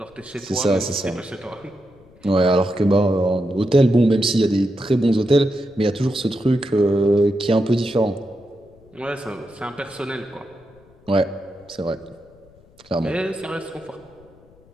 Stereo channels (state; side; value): noise; left; rumble, 28 dB below the sound